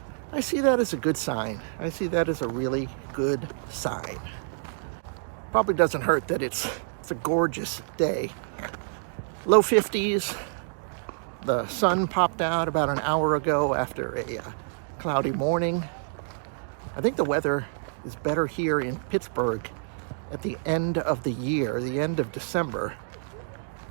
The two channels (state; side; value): silent; left; digital silence